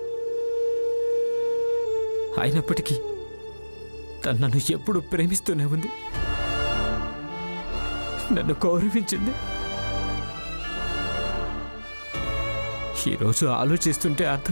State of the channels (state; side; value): inverted; both; correlation -1.00